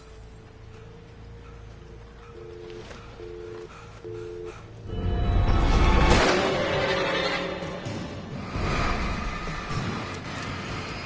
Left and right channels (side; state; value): both; identical; correlation 1.00